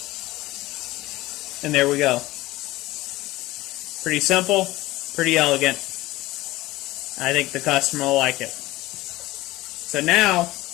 And there we go. Pretty simple, pretty elegant. I think the customer will like it. So now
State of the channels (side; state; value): right; quieter; 18.4 dB